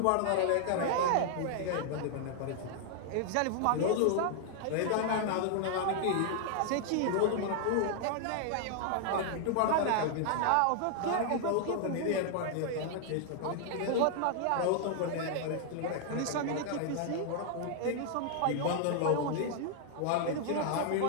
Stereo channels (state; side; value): different; both; correlation -0.01